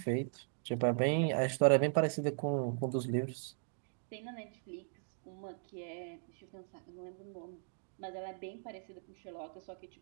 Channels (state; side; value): silent; left; digital silence